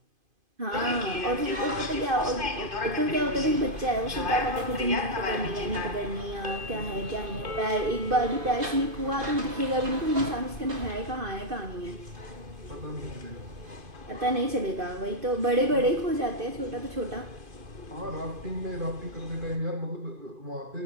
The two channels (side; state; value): left; late; 2.5 ms